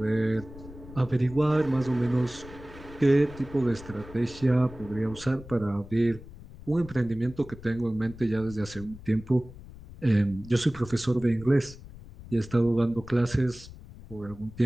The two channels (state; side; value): noise; left; rumble, 17 dB below the sound